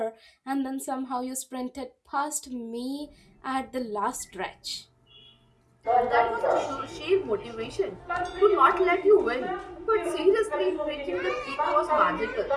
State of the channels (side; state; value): both; identical; correlation 1.00